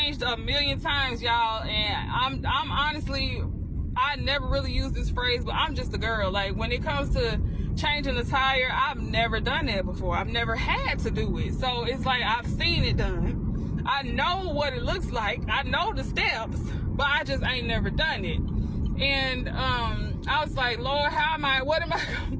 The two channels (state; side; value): identical; both; correlation 1.00